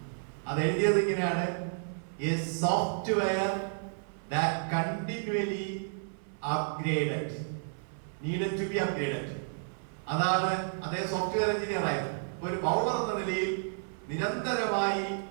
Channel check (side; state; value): left; silent; 57 dB below the other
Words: അത് എഴുതിയത് ഇങ്ങനെയാണ്: a software that continually upgraded, needed to be upgraded. അതാണ് അദ്ദേഹം സോഫ്റ്റ്വെയർ എഞ്ചിനീയർ ആയിരുന്നു. ഒരു ബൗളർ എന്ന നിലയിൽ നിരന്തരമായി